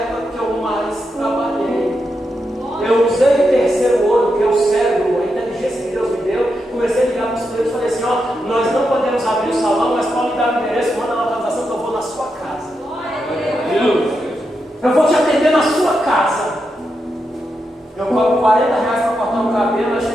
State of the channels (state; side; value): normal; both; correlation 0.85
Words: que eu mais trabalhei. Eu usei o terceiro olho, que é o cérebro, a inteligência que Deus me deu. Comecei a ligar para os clientes e falei assim: ó, nós não podemos abrir o salão, mas pode me dar o endereço, manda a localização que eu vou na sua casa. Eu vou te atender na sua casa. Eu cobro R$40 para cortar o cabelo. Eu